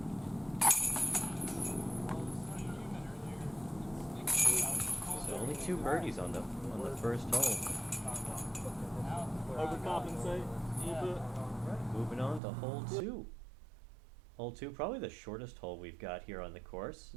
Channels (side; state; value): left; drops out; at 12.4 s